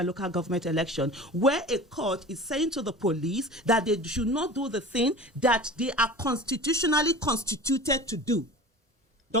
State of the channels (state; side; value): normal; both; correlation 0.37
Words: government election, where a court is saying to the police that they should not do the thing that they are constitutionally constituted to do.